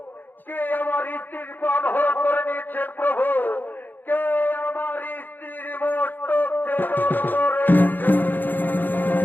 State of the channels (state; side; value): late; right; 0.089 ms